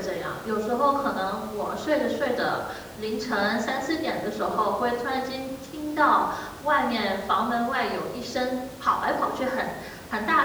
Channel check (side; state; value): both; identical; correlation 1.00